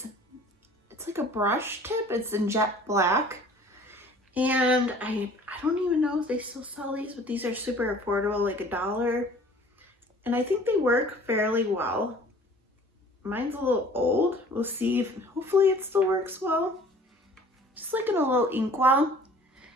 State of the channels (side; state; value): both; normal; correlation 0.50